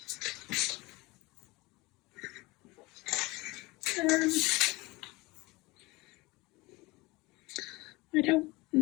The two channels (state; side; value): quieter; right; 22.9 dB